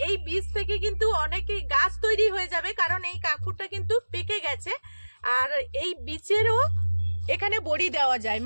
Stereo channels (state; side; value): inverted; both; correlation -1.00